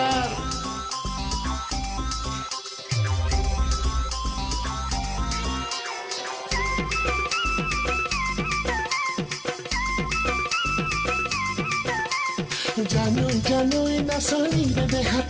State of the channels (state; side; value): identical; both; correlation 1.00